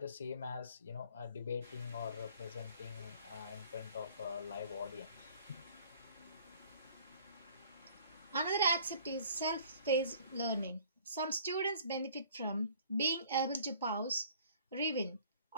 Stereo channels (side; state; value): both; inverted; correlation -0.53